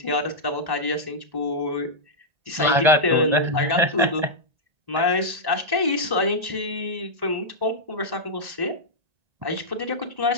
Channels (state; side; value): late; left; 1.8 ms